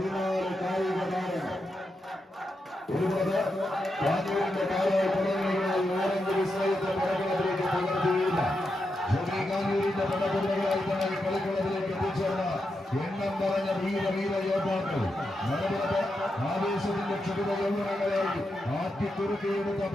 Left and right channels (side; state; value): both; normal; correlation 0.86